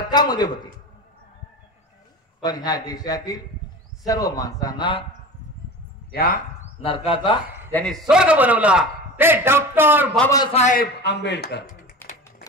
होती, पण ह्या देशातील सर्व माणसांना या नरकाचा ज्यांनी स्वर्ग बनवला ते डॉक्टर बाबासाहेब आंबेडकर.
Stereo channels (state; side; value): normal; both; correlation 0.33